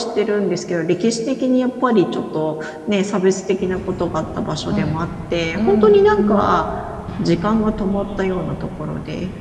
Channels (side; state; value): both; identical; correlation 1.00